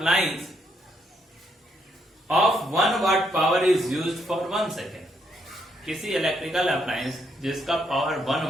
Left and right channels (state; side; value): normal; both; correlation 0.75